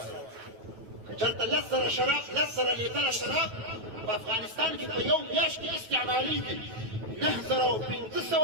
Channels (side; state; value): left; late; 9.2 ms